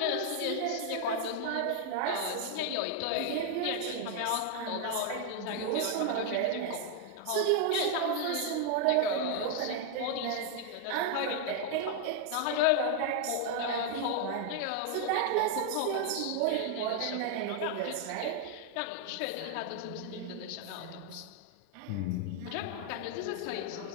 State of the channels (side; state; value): both; different; correlation 0.00